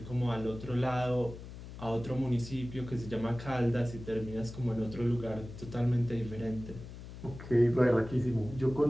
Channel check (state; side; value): noise; left; hum, 13 dB below the sound